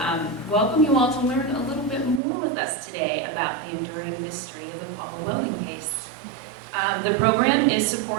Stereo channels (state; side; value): drops out; left; at 2.2 s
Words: welcome you all to learn a little bit more with us today about the enduring mystery of the Paula Welden case. The program is